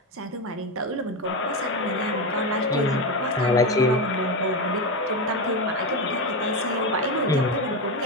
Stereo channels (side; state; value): both; normal; correlation 0.14